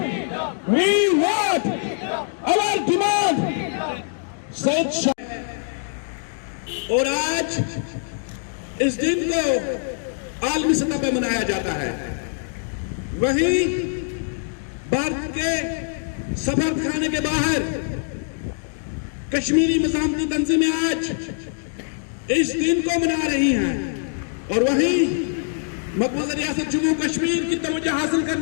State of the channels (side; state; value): right; silent; 63 dB below the other